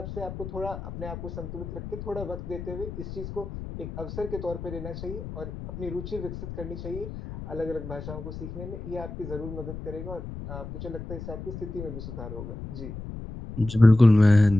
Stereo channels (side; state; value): left; noise; rumble, 9 dB below the sound